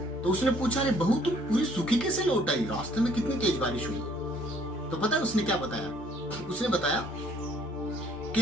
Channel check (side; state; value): both; normal; correlation 0.61